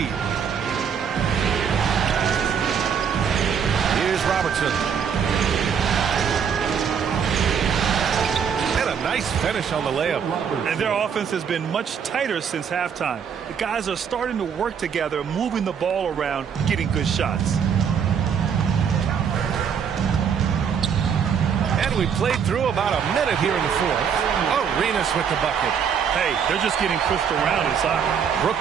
Here's Robertson. Nice finish on the layup. And their offense has been much tighter since halftime. The guys are starting to work together, moving the ball around, getting good shots. And we played through about a minute here in the 4th. Arenas with the bucket. Hey, they're just getting pushed around inside.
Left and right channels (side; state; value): left; quieter; 7.3 dB